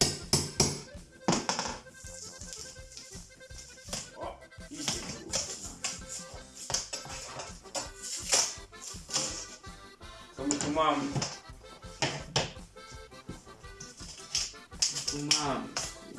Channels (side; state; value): both; identical; correlation 1.00